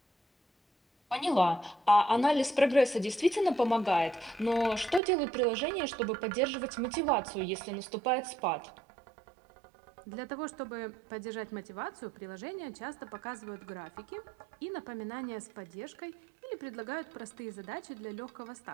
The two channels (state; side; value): drops out; left; at 5.0 s